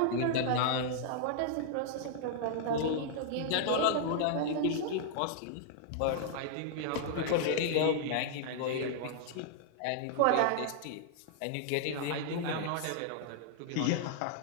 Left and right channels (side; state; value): both; different; correlation -0.01